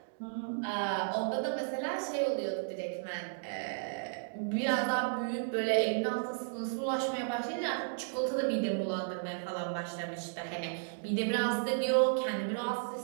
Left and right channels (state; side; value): silent; left; digital silence